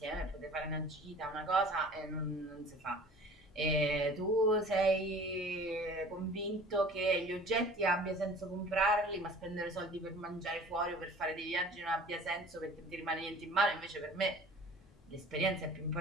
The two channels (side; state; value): both; normal; correlation 0.46